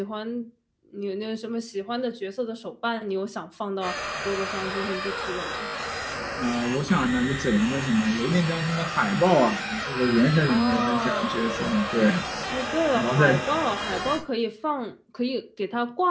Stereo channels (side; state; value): both; identical; correlation 1.00